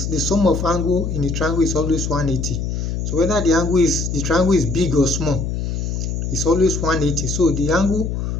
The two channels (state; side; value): noise; left; hum, 2 dB below the sound